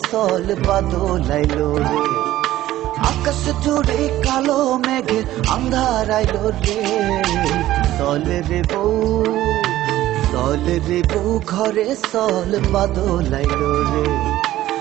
সল বাদলাইলো রে। আকাশ জুড়ে কালো মেঘে আন্ধার আইলো রে, চলে রে বউ, চলে রে বউ ঘরে সল বাদলাইলো রে,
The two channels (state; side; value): quieter; left; 14.6 dB